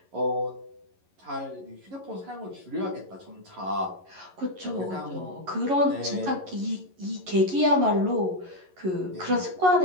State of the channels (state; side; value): late; left; 11 ms